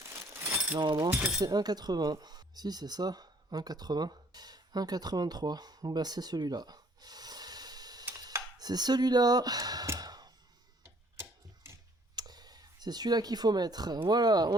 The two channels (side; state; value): both; normal; correlation 0.60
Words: Normalement, ça c'est 1,80. Si, c'est ça. 1,80. 1,83. Bah, c'est celui-là. C'est celui-là. C'est celui-là qu'il faut mettre. Voilà,